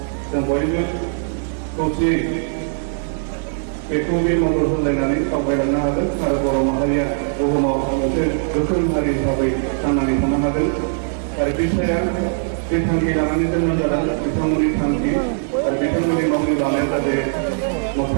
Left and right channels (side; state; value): left; silent; digital silence